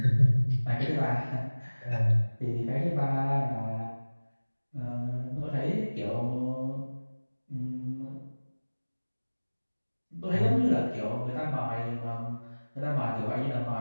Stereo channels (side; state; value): both; inverted; correlation -1.00